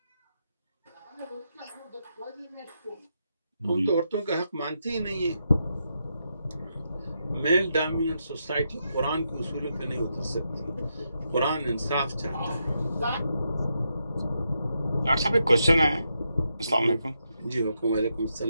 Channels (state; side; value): inverted; both; correlation -0.83